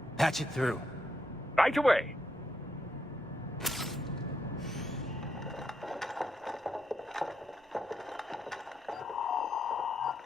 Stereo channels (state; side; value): normal; both; correlation 0.80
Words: Patch it through. Right away.